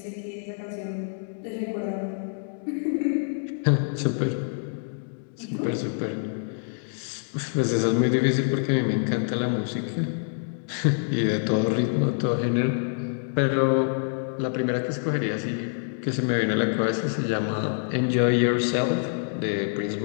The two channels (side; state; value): right; silent; digital silence